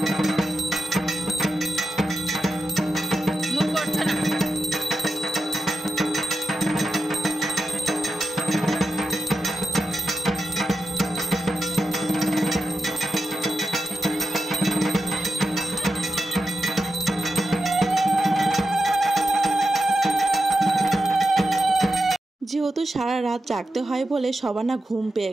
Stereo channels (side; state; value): both; normal; correlation 0.89